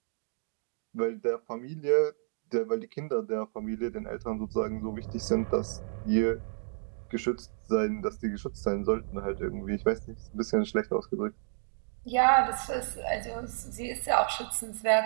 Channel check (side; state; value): left; silent; digital silence